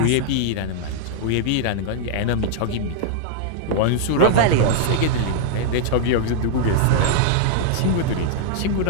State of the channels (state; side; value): different; both; correlation -0.01